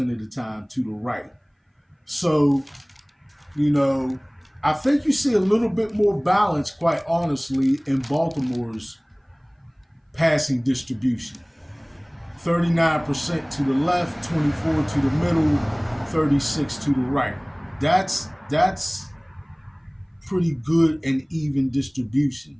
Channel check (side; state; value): both; identical; correlation 1.00